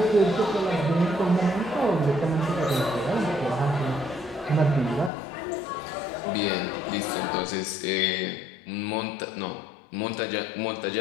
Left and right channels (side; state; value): right; drops out; at 5.1 s